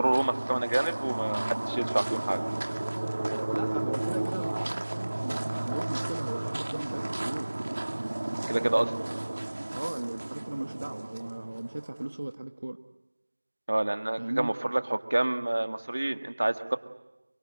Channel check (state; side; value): inverted; both; correlation -1.00